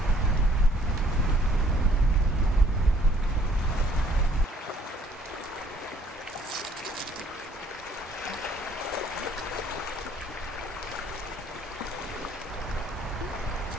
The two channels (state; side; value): normal; both; correlation 0.61